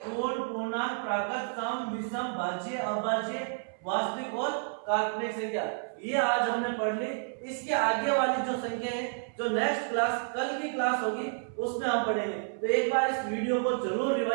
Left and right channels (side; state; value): left; silent; 58 dB below the other